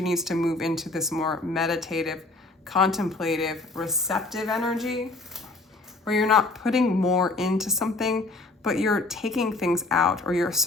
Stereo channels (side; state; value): right; quieter; 3.2 dB